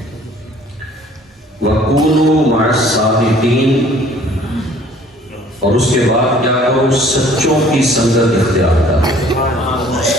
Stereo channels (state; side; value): normal; both; correlation 0.54